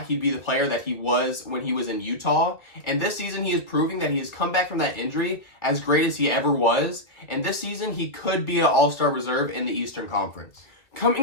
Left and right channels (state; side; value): late; right; 2.0 ms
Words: he'd be the player that he was when he was in Utah, and this season he is proving that he has come back from that injury as great as he ever was, and this season he could be an all-star reserve in the Eastern Conference.